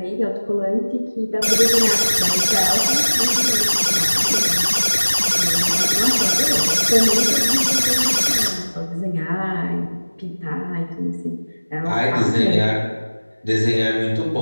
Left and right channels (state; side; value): inverted; both; correlation -1.00